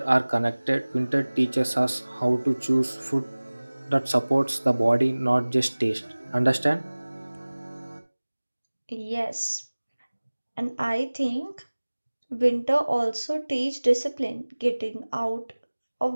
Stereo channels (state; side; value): inverted; both; correlation -1.00